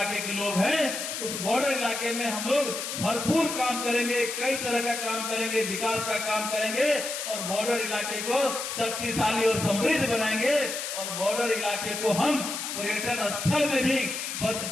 के लोग हैं उस बॉर्डर इलाके में हम लोग भरपूर काम करेंगे, कई तरह का काम करेंगे, विकास का काम करेंगे और बॉर्डर इलाके को शक्तिशाली और समृद्ध बनाएंगे और बॉर्डर इलाके को हम पर्यटन स्थल में भी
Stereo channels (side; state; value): left; noise; hiss, 5 dB below the sound